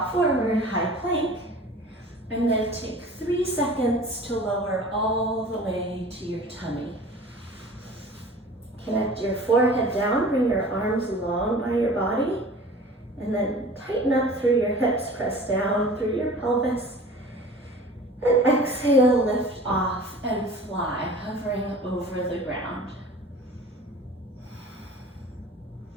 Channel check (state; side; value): normal; both; correlation 0.43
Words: forward, high plank, and then take 3 seconds to lower all the way to your tummy. Connect your forehead down, bring your arms long by your body, and then tighten up through your hips, press down through your pelvis, and exhale, lift off and fly, hovering over the ground.